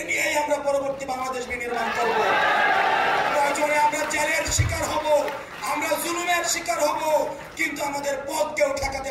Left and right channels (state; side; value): identical; both; correlation 1.00